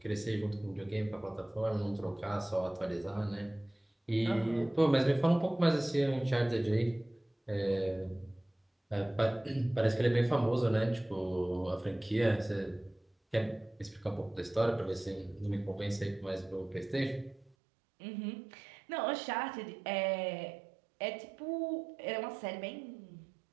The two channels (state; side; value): drops out; left; at 17.6 s